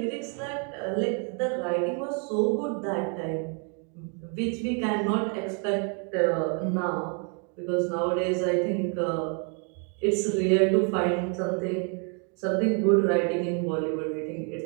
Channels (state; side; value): quieter; left; 39.2 dB